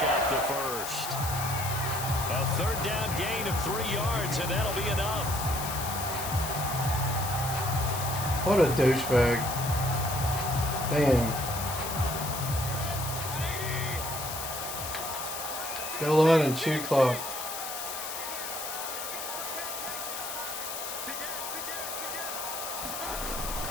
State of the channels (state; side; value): noise; left; hiss, 6 dB below the sound